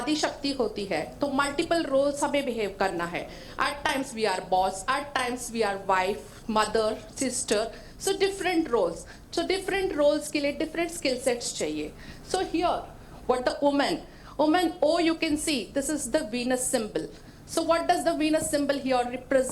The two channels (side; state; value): both; identical; correlation 1.00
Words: शक्ति होती है, तो multiple roles हमें behave करना है. At times we are boss, at times we are wife, mother, sister. So different roles. So different roles के लिए different skill sets चाहिए. So here, what the woman, oh you can see, this is the Venus symbol. So what does the Venus symbol here